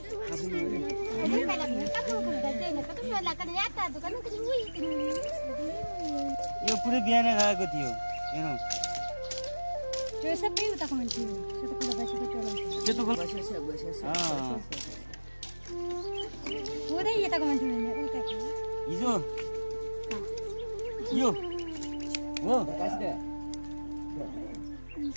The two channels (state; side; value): inverted; both; correlation -1.00